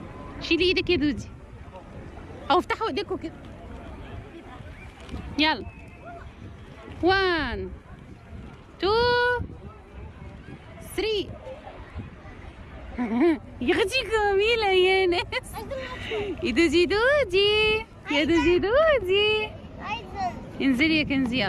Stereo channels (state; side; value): identical; both; correlation 1.00